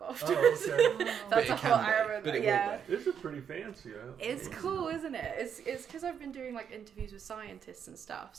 afterwards. Oh, okay. That's a whole Arabic. But it yeah. This is pretty fancy. It's cool, isn't it? It's because I've been doing like interviews with scientists and stuff,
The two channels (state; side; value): quieter; left; 7.9 dB